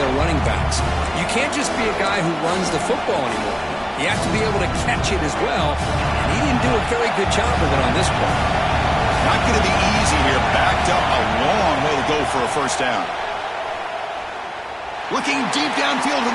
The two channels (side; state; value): both; identical; correlation 1.00